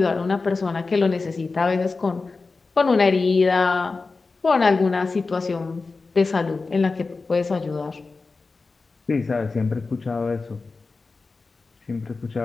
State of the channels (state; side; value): quieter; right; 4.0 dB